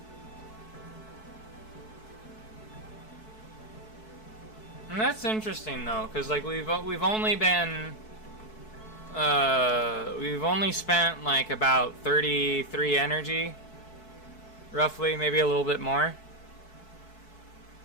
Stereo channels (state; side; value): late; right; 4.6 ms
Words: And that's interesting though, because like we've only been we've only spent like about 33 energy, roughly, maybe a little bit more.